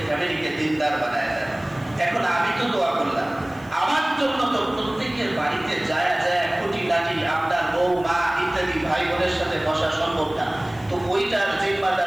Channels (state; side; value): noise; left; hiss, 27 dB below the sound